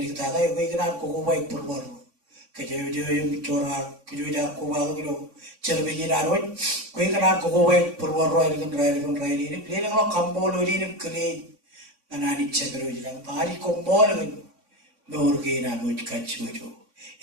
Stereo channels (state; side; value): late; left; 3.5 ms